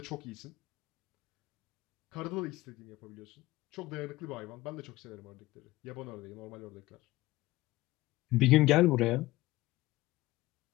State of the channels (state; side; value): quieter; right; 18.3 dB